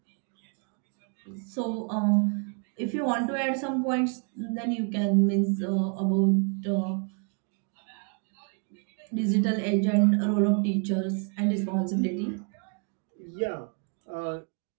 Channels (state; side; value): quieter; left; 39.0 dB